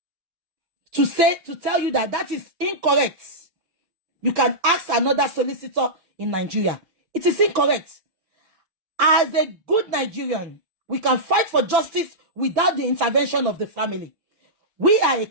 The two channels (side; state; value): left; late; 6.0 ms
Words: to tell you that is incorrect. You can ask another solicitor in Nigeria. It is incorrect. As a good Nigerian, we can fight for justice without the intervention of the family. We are a